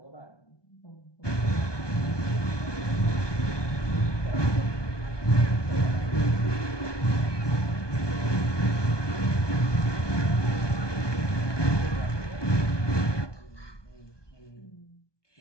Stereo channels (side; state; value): right; late; 1.2 ms